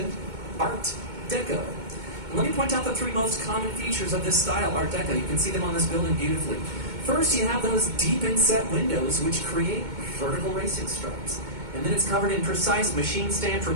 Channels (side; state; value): left; late; 2.2 ms